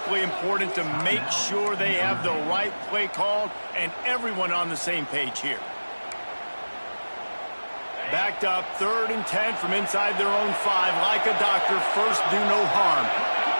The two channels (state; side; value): inverted; both; correlation -1.00